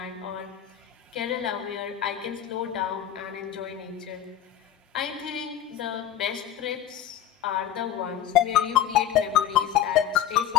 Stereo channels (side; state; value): right; quieter; 10.6 dB